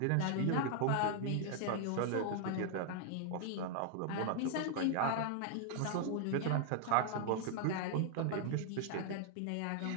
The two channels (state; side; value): different; both; correlation 0.00